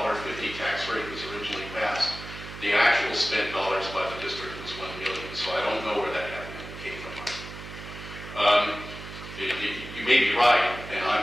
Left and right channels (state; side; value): noise; right; hum, 12 dB below the sound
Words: tax rate was originally passed, the actual spent dollars by the district was $1 million. So I don't know where that came from. You may be right, and